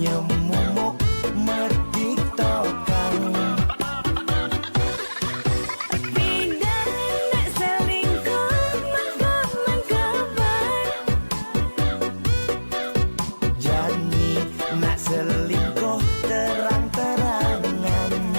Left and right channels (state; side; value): inverted; both; correlation -1.00